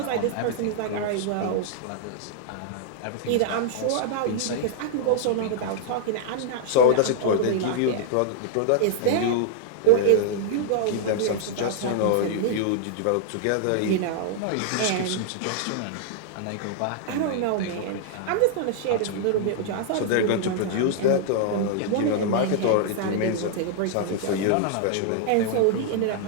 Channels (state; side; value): different; both; correlation -0.01